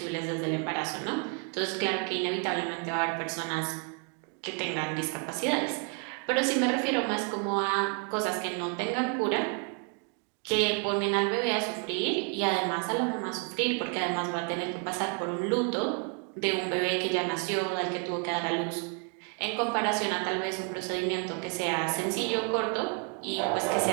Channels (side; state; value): left; quieter; 37.5 dB